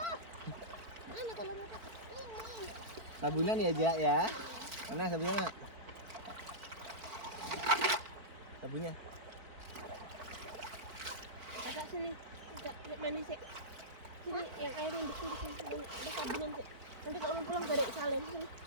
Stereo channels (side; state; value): left; late; 4.5 ms